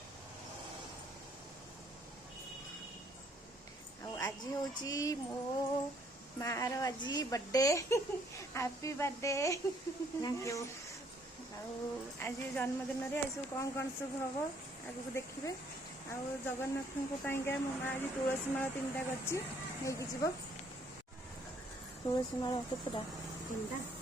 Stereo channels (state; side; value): normal; both; correlation 0.65